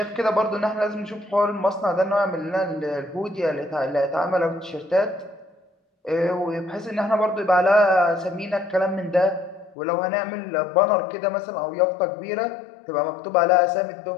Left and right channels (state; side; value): drops out; right; at 9.8 s